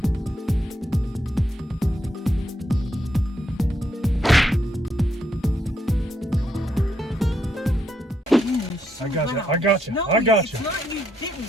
I got you. No, I got you. It's not you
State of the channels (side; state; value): both; normal; correlation 0.77